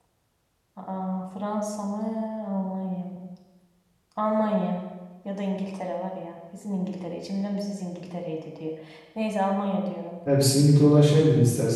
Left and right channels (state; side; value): identical; both; correlation 1.00